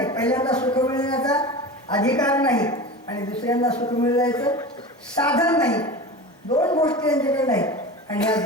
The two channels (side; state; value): both; normal; correlation 0.31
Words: पहिल्यांदा सुख मिळवण्याचा अधिकार नाही आणि दुसऱ्यांदा सुख मिळवायचं साधन नाही. दोन गोष्टी त्यांच्याकडे नाही आणि या